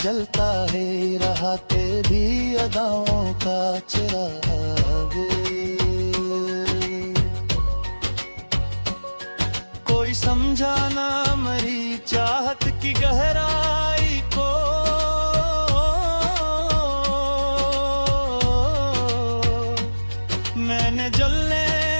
है रहा तेरी अदाओं का चिराग। कोई समझा ना मरी चाहत की गहराई को, मैंने जलने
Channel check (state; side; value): inverted; both; correlation -1.00